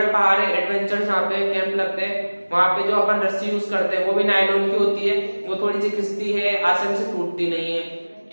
पहाड़ है, एडवेंचर जहाँ पे कैंप लगते हैं, वहां पे जो अपन रस्सी यूज करते हैं वो भी नायलॉन की होती है। वो थोड़ी सी खिसती है, आसानी से टूटती नहीं है।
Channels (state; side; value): inverted; both; correlation -1.00